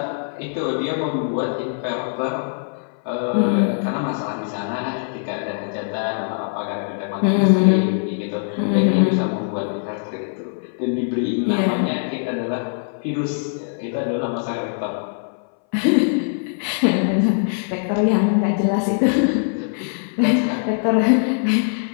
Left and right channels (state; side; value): silent; right; 60 dB below the other